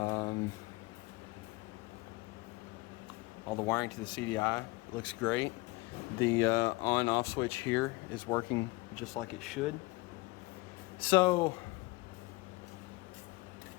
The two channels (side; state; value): right; quieter; 22.5 dB